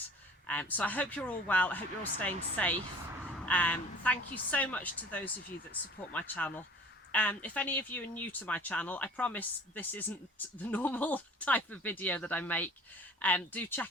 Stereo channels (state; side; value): normal; both; correlation 0.47